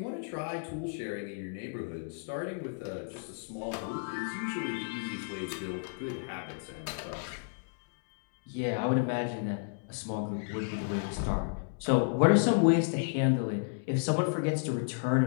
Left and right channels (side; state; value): right; silent; digital silence